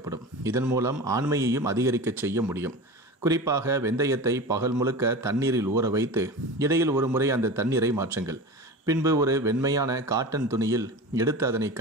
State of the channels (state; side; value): normal; both; correlation 0.30